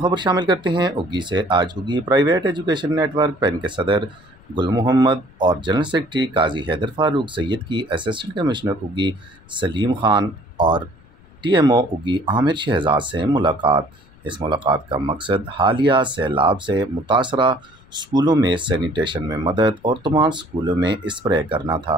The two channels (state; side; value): noise; left; rumble, 27 dB below the sound